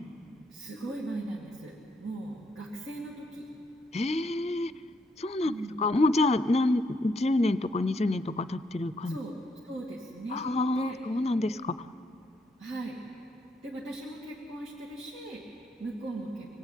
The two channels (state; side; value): normal; both; correlation 0.75